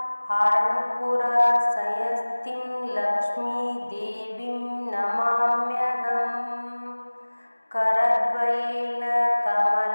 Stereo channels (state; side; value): inverted; both; correlation -1.00